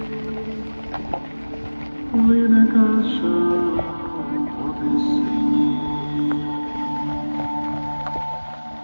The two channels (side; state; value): both; inverted; correlation -1.00